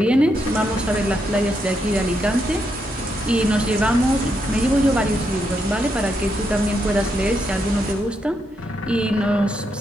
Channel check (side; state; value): both; normal; correlation 0.80